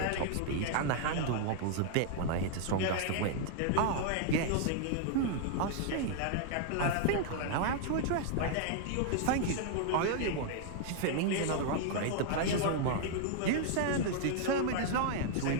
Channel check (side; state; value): both; different; correlation 0.00